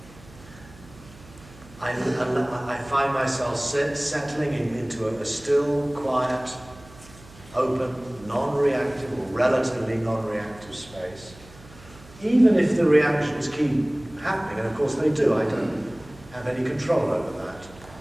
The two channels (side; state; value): right; noise; hum, 22 dB below the sound